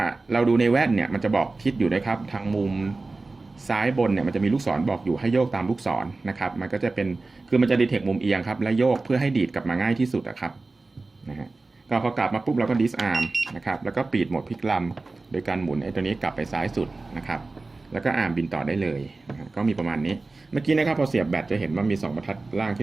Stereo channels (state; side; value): quieter; left; 3.5 dB